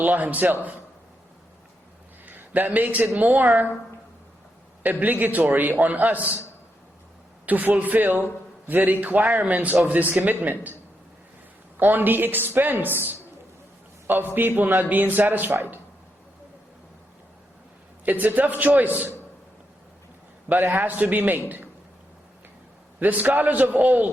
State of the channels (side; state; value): both; normal; correlation 0.82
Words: Himself. That makes it more obligatory on us to fulfill the requirements of this commitment, on the expense of people not being satisfied. It's a tough choice, but it has to be made. The scholars of